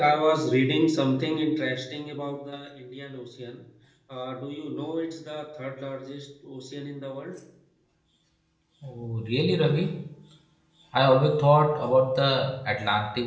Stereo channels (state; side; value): identical; both; correlation 1.00